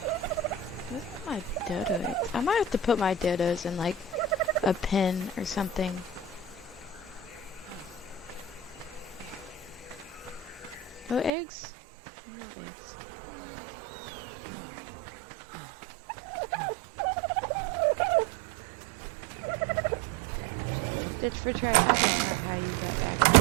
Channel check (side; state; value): left; drops out; at 11.3 s